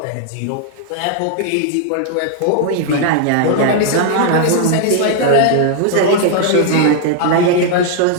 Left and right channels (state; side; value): different; both; correlation 0.00